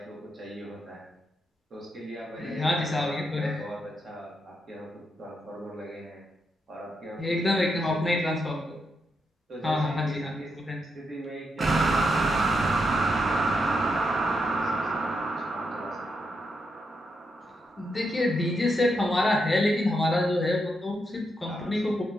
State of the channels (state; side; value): normal; both; correlation 0.82